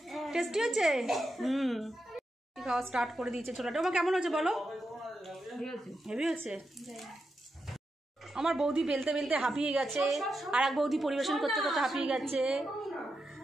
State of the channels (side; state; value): both; normal; correlation 0.87